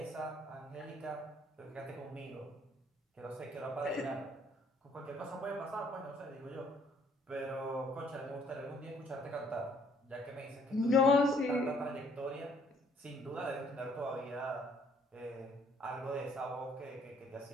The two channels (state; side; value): normal; both; correlation 0.62